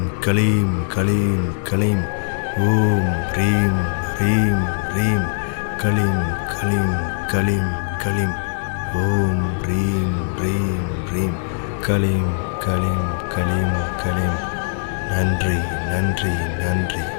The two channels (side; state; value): right; silent; 62 dB below the other